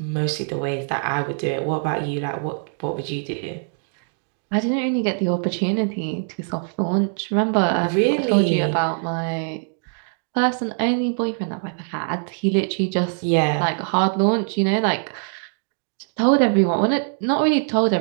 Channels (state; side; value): silent; left; 64 dB below the other